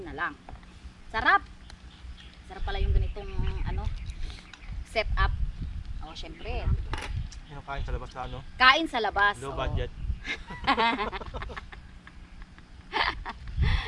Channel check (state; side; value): identical; both; correlation 1.00